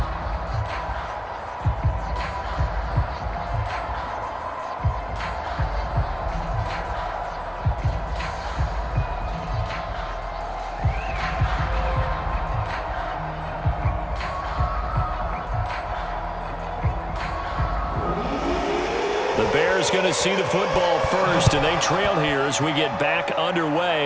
The Bears going to see the football first, and they trail here as we get back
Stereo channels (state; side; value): identical; both; correlation 1.00